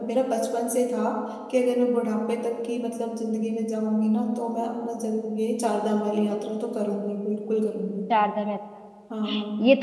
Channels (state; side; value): identical; both; correlation 1.00